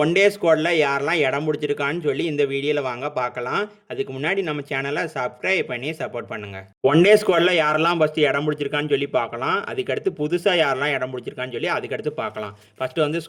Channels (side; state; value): both; identical; correlation 1.00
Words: ஒன் டே ஸ்குவாடில் யாரெல்லாம் இடம் பிடிச்சிருக்கான்னு சொல்லி இந்த வீடியோவில் வாங்க பார்க்கலாம். அதுக்கு முன்னாடி நம்ம சேனலை சப்ஸ்கிரைப் பண்ணி சப்போர்ட் பண்ணுங்கள். ஒன் டே ஸ்குவாடில் யாரெல்லாம் ஃபஸ்ட்டு இடம் பிடிச்சிருக்கான்னு சொல்லி பார்க்கலாம். அதுக்கடுத்து புதுசாக யாரெல்லாம் இடம் பிடிச்சிருக்கான்னு சொல்லி அதுக்கடுத்து பார்க்கலாம். ஃபஸ்ட்டு வந்து